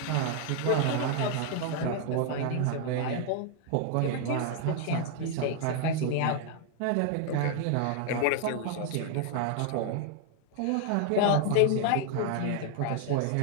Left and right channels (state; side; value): different; both; correlation 0.00